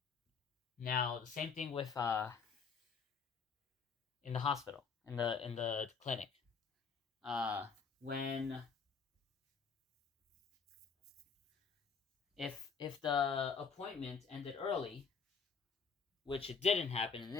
Now, the same thing with in the hospital, in the clinic. If the appointment ended early, which it didn't happen in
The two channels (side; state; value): right; quieter; 5.6 dB